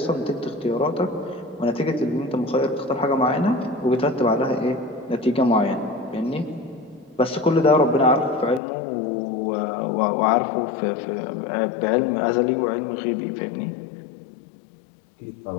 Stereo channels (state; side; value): drops out; right; at 8.6 s